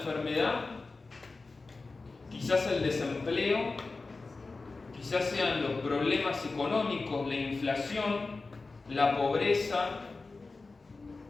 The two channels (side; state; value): right; quieter; 3.8 dB